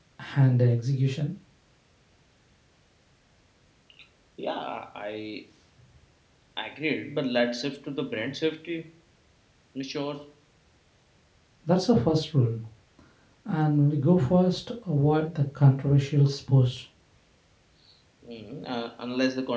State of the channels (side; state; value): both; identical; correlation 1.00